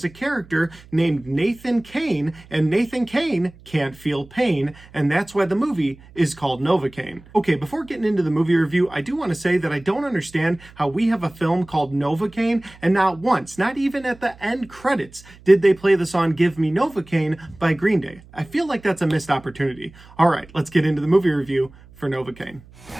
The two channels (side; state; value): right; noise; hum, 23 dB below the sound